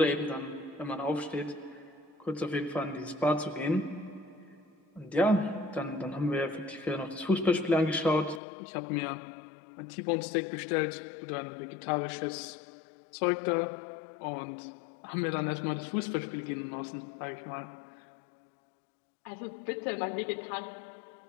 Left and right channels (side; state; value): right; drops out; at 8.4 s